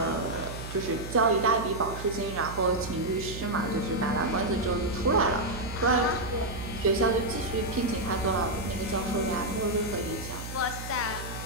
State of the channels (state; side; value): noise; right; hum, 9 dB below the sound